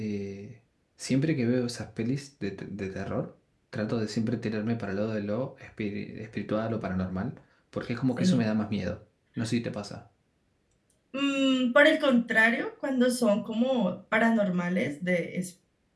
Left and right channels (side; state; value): both; identical; correlation 1.00